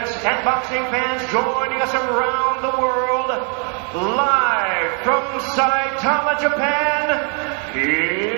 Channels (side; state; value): left; quieter; 38.9 dB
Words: and boxing fans joining us around the world, live from Saitama, Japan,